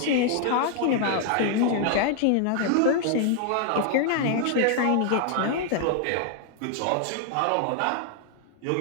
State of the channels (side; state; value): both; different; correlation 0.00